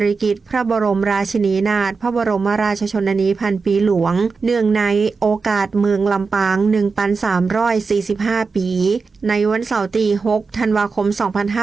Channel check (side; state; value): left; quieter; 4.7 dB